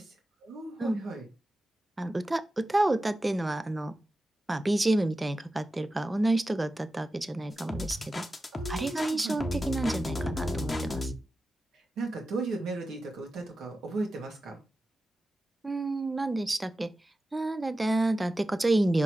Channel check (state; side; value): normal; both; correlation 0.93